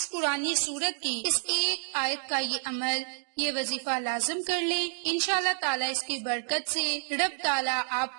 قرآنی سورت کی اس ایک آیت کا یہ عمل، یہ وظیفہ لازم کر لیں۔ انشاءاللہ تعالیٰ اس کی برکت سے رب تعالیٰ آپ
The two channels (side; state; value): left; silent; digital silence